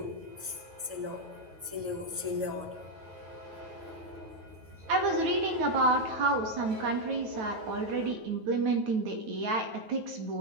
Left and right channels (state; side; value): late; left; 9.2 ms